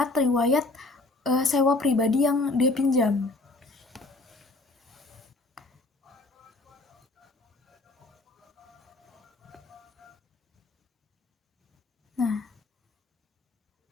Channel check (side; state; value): right; quieter; 3.1 dB